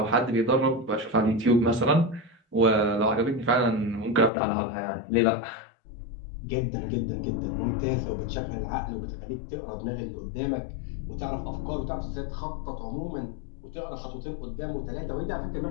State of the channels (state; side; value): drops out; right; at 4.3 s